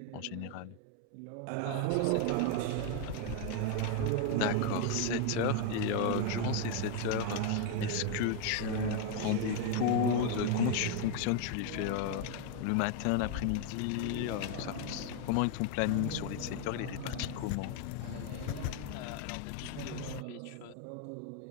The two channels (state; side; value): different; both; correlation 0.01